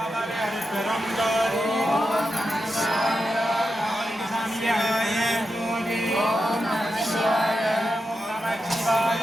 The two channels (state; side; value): normal; both; correlation 0.89